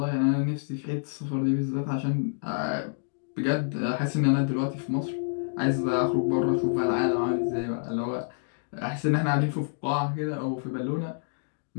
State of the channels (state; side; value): silent; right; digital silence